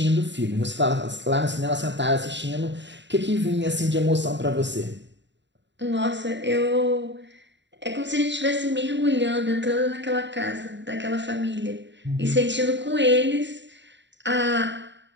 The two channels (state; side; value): late; left; 0.52 ms